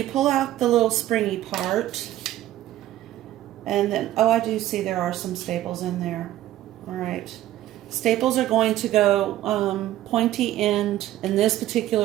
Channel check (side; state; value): left; quieter; 13.9 dB